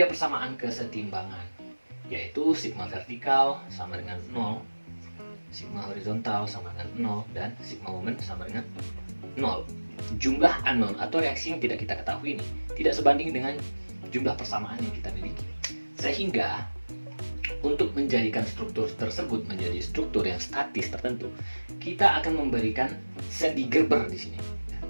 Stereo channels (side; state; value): both; inverted; correlation -1.00